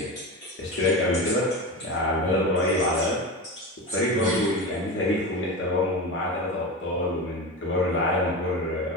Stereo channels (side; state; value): both; normal; correlation 0.23